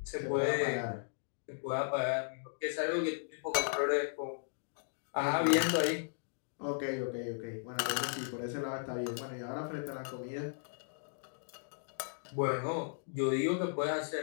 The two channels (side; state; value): right; silent; digital silence